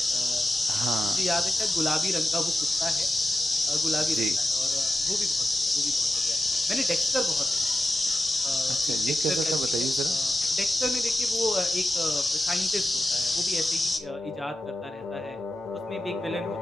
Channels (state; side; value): normal; both; correlation 0.91